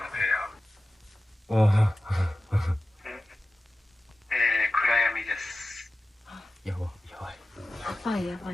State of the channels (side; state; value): both; normal; correlation 0.95